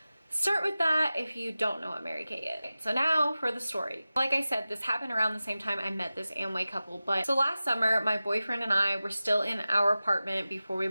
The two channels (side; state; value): both; inverted; correlation -0.95